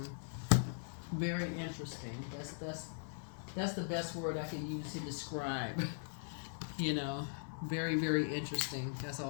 very interesting. That's the best word I can use to describe. Very, very interesting. That's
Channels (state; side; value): silent; right; 51 dB below the other